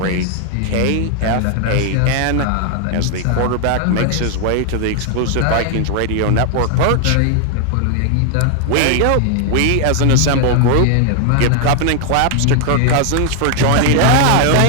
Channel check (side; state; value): both; different; correlation 0.00